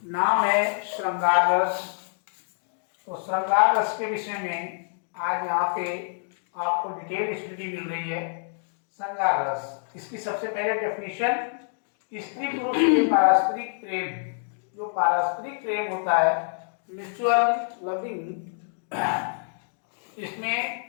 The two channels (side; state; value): right; silent; digital silence